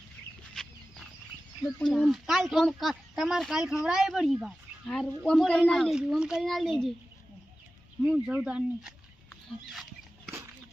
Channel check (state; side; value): normal; both; correlation 0.95